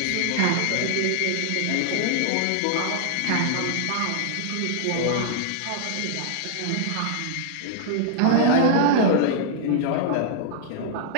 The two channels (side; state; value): both; different; correlation 0.00